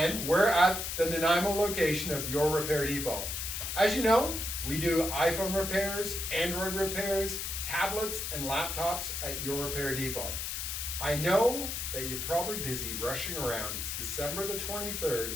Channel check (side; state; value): left; noise; hiss, 4 dB below the sound